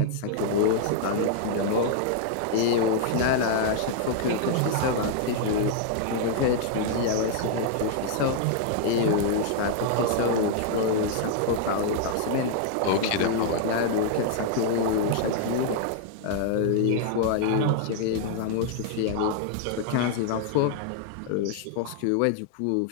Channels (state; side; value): different; both; correlation 0.00